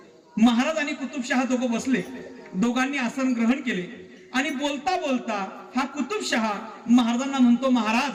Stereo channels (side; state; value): both; identical; correlation 1.00